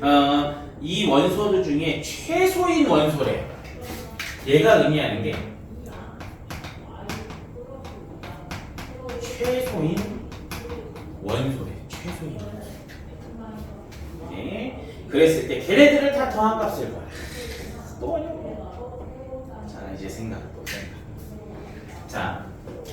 이 원소들 중에 최소인 원소래. 얘가 의미하는 게 최소인 원소래. 최소인 원소. 네. 그랬을 때 걔네들을 다 더한 값을 구하라. 또 어려워. 자, 이제 생각. 자,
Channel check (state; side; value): identical; both; correlation 1.00